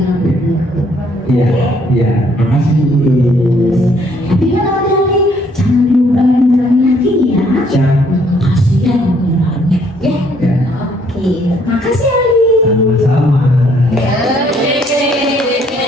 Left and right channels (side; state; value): both; normal; correlation 0.66